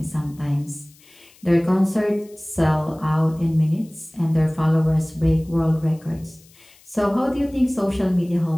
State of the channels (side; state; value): left; noise; hiss, 27 dB below the sound